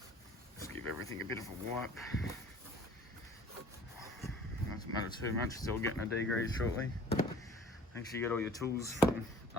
Just give everything a bit of a wipe. Doesn't matter too much, it's all getting a degrease shortly. Make sure you get all your tools from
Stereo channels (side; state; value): both; normal; correlation 0.49